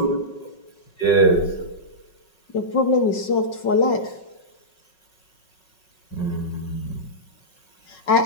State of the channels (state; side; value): late; right; 5.4 ms